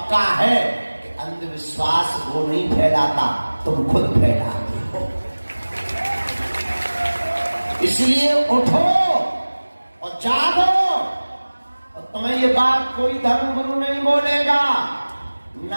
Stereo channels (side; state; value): both; inverted; correlation -1.00